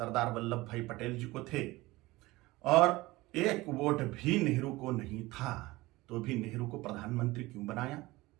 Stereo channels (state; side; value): quieter; left; 20.1 dB